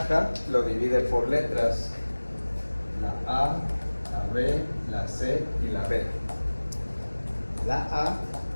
lo divide por letras: la A, la B, la C y la B. La A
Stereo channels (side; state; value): both; inverted; correlation -1.00